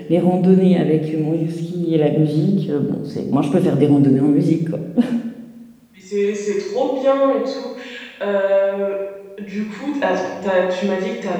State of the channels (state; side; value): identical; both; correlation 1.00